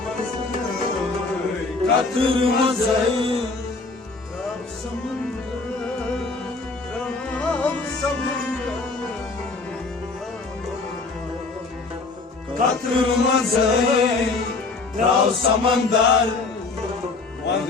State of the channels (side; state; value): right; quieter; 3.8 dB